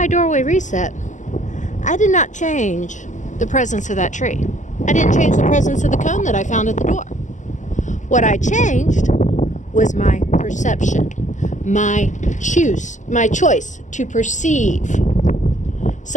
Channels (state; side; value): late; right; 0.36 ms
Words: doorway reset, I did not change the presence of that tree. I didn't change the presence of the cone that I found at the door. What I changed was my perception, my choice to perceive